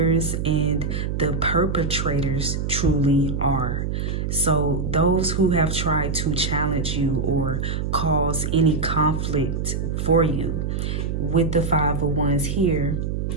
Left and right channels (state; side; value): noise; right; hum, 2 dB below the sound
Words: and the perpetrators truly are. So those who have tried to challenge you or cause any conflict for you, with the Five of Wands here,